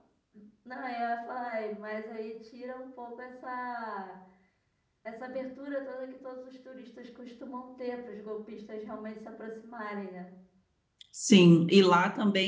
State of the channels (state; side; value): identical; both; correlation 1.00